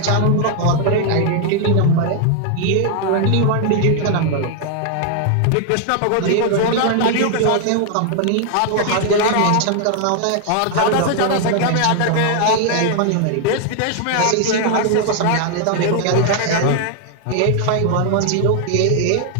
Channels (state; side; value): different; both; correlation 0.00